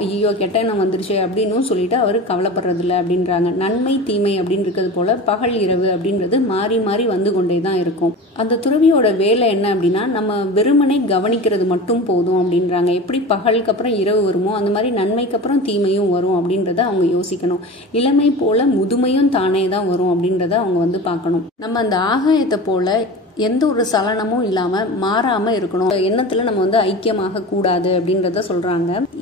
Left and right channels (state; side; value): normal; both; correlation 0.33